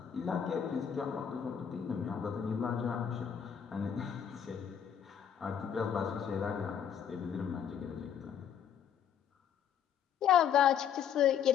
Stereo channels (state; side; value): quieter; right; 8.5 dB